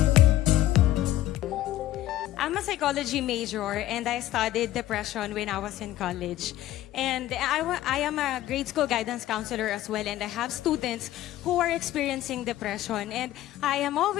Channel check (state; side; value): quieter; right; 14.1 dB